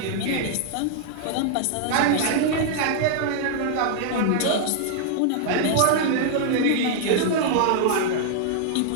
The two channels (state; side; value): different; both; correlation -0.01